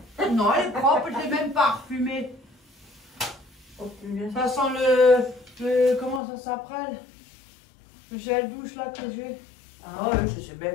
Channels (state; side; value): drops out; right; at 6.2 s